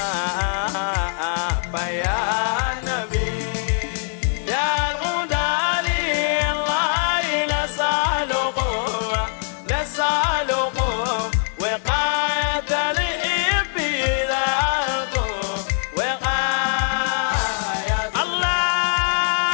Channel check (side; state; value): right; silent; digital silence